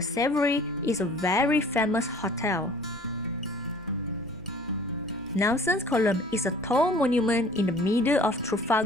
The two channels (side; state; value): both; normal; correlation 0.49